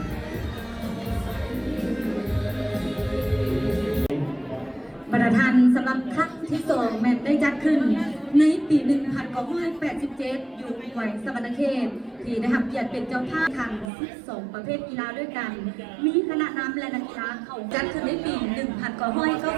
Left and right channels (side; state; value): left; drops out; at 13.9 s